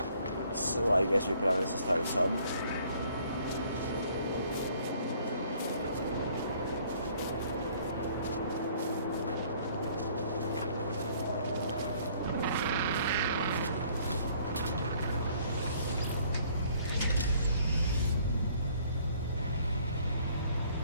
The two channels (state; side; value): inverted; both; correlation -0.60